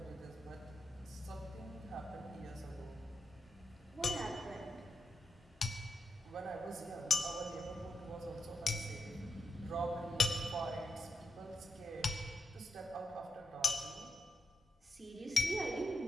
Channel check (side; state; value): both; normal; correlation 0.86